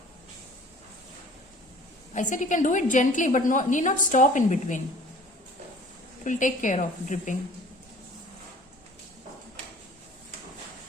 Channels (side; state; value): both; normal; correlation 0.49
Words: I said you can do it gently, but need not stop in between. It will take care of dripping.